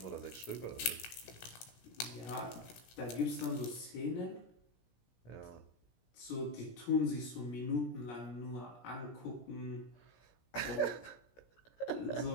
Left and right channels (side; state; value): right; late; 17 ms